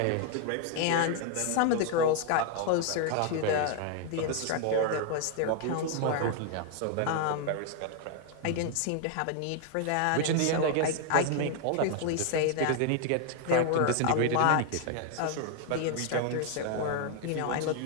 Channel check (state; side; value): different; both; correlation 0.00